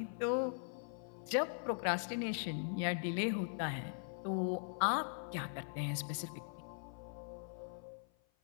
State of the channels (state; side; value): silent; right; 51 dB below the other